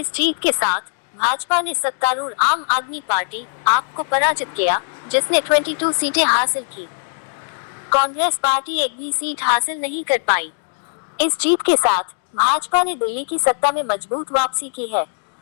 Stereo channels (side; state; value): right; silent; digital silence